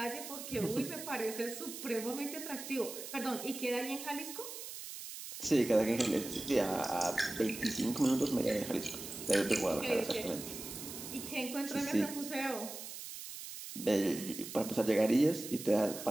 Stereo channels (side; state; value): right; noise; hiss, 10 dB below the sound